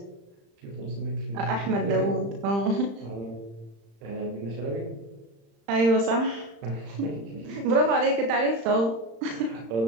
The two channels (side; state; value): left; late; 35 ms